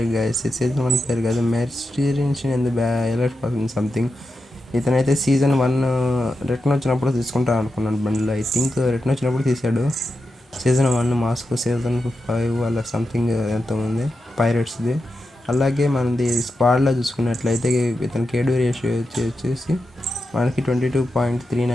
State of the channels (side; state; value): both; normal; correlation 0.89